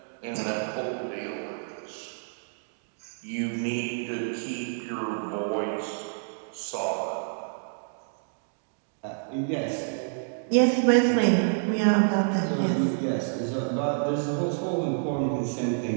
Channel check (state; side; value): silent; left; digital silence